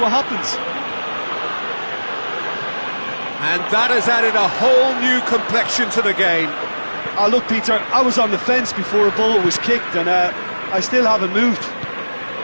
happens. And that has added a whole new complexion to the game. Oh, look, Peter, I was on the fence before a ball was kicked, and I still haven't moved.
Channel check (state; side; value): inverted; both; correlation -1.00